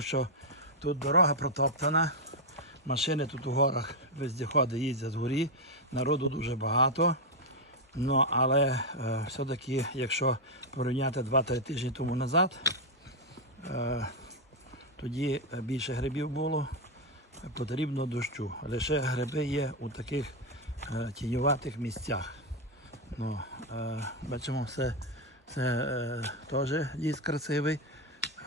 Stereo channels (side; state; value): both; normal; correlation 0.02